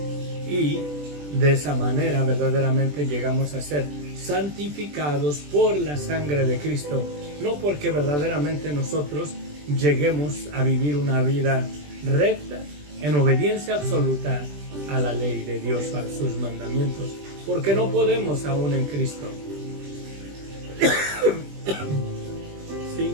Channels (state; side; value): late; left; 20 ms